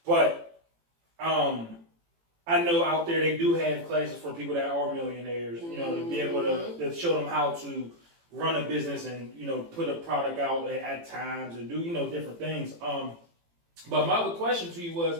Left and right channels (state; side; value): late; left; 18 ms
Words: But I know out there they do have classes for people that are millionaires. To be able to show them how to run a business and put a product out at times and do different things. But my other question to you was,